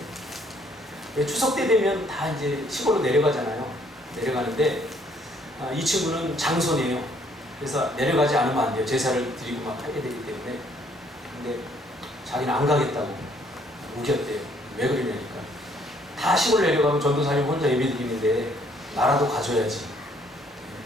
추석 때 되면 다 이제 시골로 내려가잖아요. 내려가는데 이 친구는 장손이에요. 그래서 내려가지 않으면 안 돼요. 제사를 드리고 막 하게 되기 때문에. 근데 자기는 안 가겠다고 우겼대요. 왜 그러냐니까 다 시골 내려가면 전도사님 혼자 예배 드리는데 나라도 가줘야지.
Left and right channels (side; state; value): both; normal; correlation 0.65